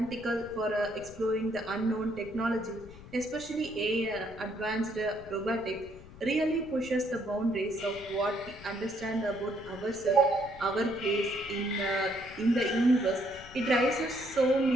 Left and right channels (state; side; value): noise; left; rumble, 18 dB below the sound